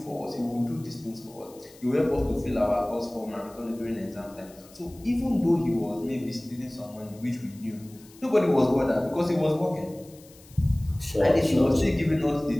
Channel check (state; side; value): noise; left; hiss, 24 dB below the sound